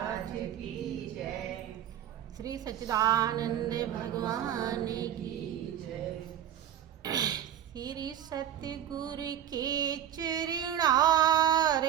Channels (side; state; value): left; quieter; 10.7 dB